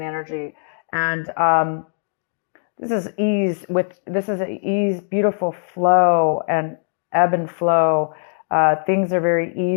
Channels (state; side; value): silent; right; 65 dB below the other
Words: energy, and this is ease. This is ease, beautiful flow and ebb and flow. Things are very